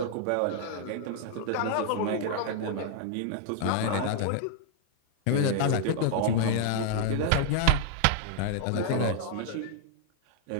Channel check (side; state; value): both; different; correlation 0.00